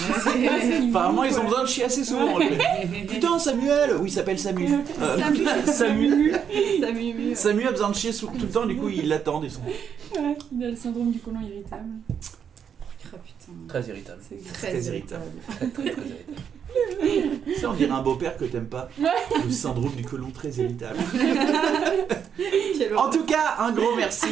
ils ont besoin de chier assez souvent. Putain, Samuel. Oui, il s'appelle Samu. Samu. Samu a besoin de chier tout le temps. Du coup, ils l'attendent. Ils sont. Ouais, il a le syndrome du côlon irritable. Ah putain. Très irritable. C'est Très Très irritable. Très, très irritable. Ça, on dirait un beau-père que t'aimes pas. Le syndrome du côlon très irritable. Quelle En tout cas, un gros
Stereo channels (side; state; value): left; quieter; 7.8 dB